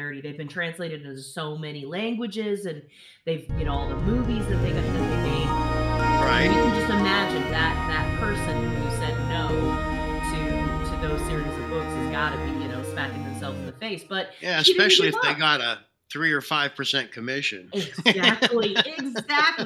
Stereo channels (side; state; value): both; identical; correlation 1.00